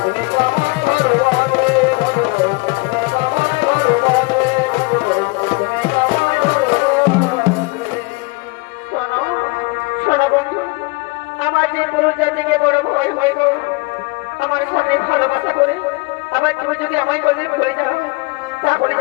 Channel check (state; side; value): quieter; right; 26.8 dB